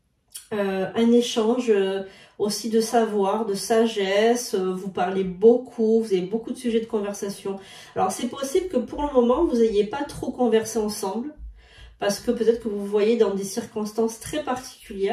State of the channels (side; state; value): both; identical; correlation 1.00